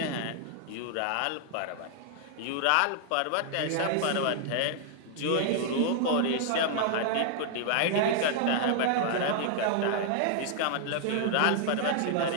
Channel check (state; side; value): different; both; correlation 0.00